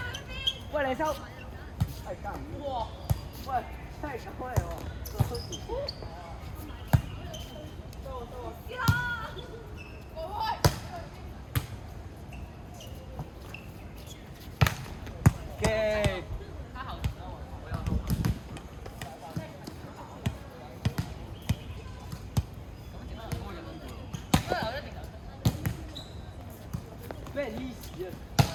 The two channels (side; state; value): both; identical; correlation 1.00